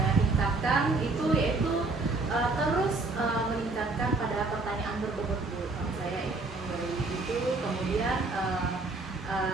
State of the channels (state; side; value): quieter; left; 3.4 dB